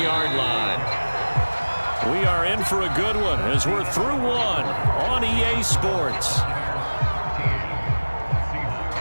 line. We are in for a good one as we're through one on EA Sports.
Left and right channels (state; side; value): inverted; both; correlation -1.00